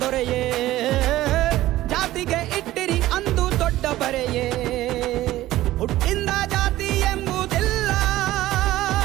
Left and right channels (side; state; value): left; quieter; 15.6 dB